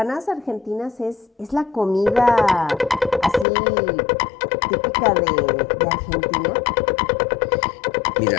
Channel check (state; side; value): drops out; right; at 3.5 s